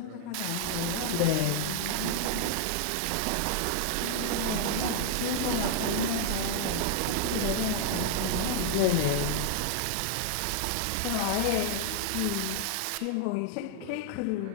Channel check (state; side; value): different; both; correlation -0.01